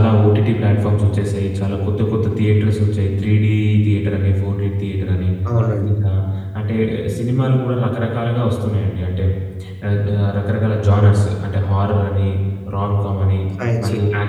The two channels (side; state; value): both; identical; correlation 1.00